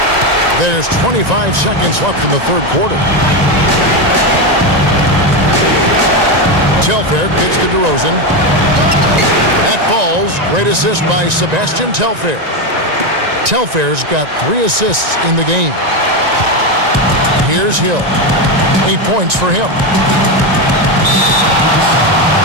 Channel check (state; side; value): late; left; 1.9 ms